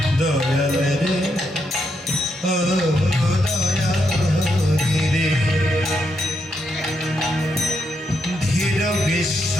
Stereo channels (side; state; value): both; normal; correlation 0.80